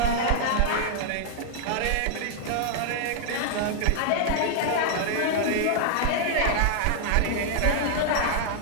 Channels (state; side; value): different; both; correlation 0.00